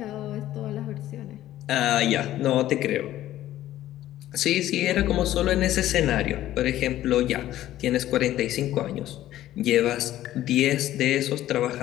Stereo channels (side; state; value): right; quieter; 13.7 dB